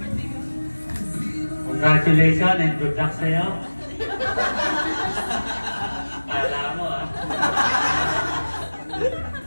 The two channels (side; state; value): both; inverted; correlation -1.00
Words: Congratulations and good luck sa'yo. Kala mo, ah.